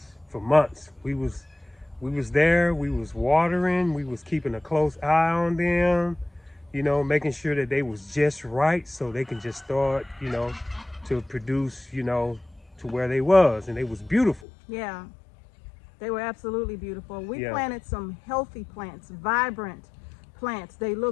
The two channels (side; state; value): right; drops out; at 14.5 s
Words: for months. We was there, we was watering, we was keeping a close eye on them, making sure that they was just right so they can just start, to produce, to where they was, and they was beautiful. Yeah, they were absolutely beautiful. We planted some healthy plants, vibrant plants. They